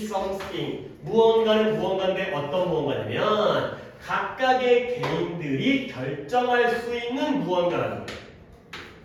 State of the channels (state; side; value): identical; both; correlation 1.00